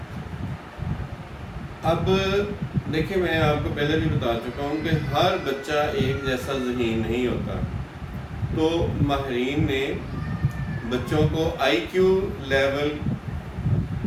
اب دیکھیں، میں آپ کو پہلے بھی بتا چکا ہوں کہ ہر بچہ ایک جیسا ذہین نہیں ہوتا۔ تو ماہرین نے بچوں کو آئی کیو لیول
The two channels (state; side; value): identical; both; correlation 1.00